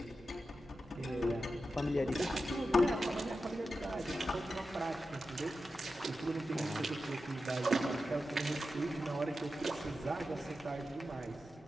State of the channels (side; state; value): both; normal; correlation 0.91